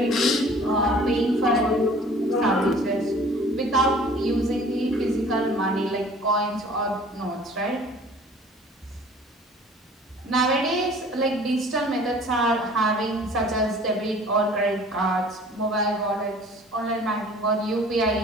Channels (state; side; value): normal; both; correlation 0.49